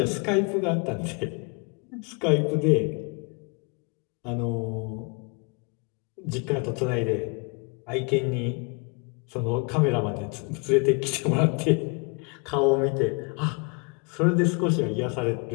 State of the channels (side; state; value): right; quieter; 33.1 dB